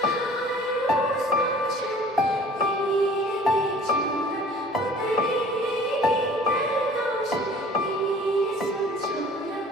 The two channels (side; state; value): both; normal; correlation 0.49